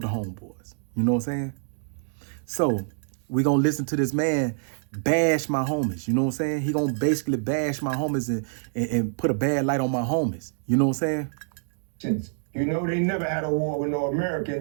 homeboys, you know what I'm saying? So we gonna listen to this man bash my homies, you know what I'm saying? He gonna basically bash my homies and put a bad light on my homies, you know what I'm saying? You know, they never had a war with no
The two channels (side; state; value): left; silent; 61 dB below the other